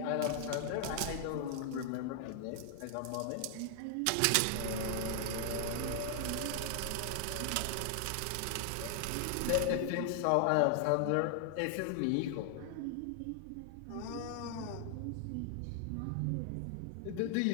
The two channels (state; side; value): different; both; correlation 0.00